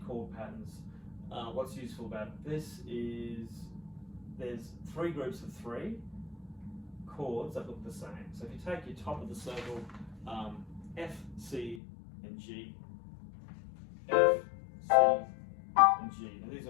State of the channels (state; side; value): drops out; right; at 11.8 s